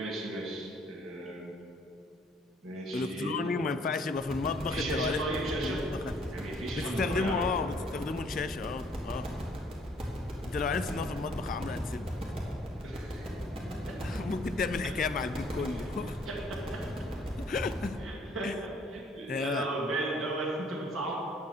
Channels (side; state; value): both; normal; correlation 0.61